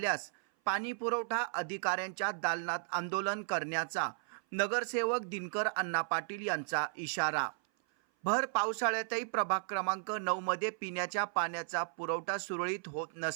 पाणी पुरवठा अधिकाऱ्यांच्या दालनात आंदोलन करण्याचा नगरसेवक दिनकर अण्णा पाटील यांचा इशारा। भर पावसाळ्यातही प्रभाग क्रमांक 9 मध्ये पिण्याच्या पाण्याचा पुरवठा सुरळीत होत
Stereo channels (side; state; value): left; silent; 55 dB below the other